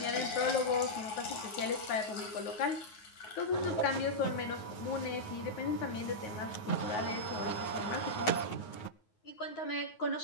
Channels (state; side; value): late; right; 9.4 ms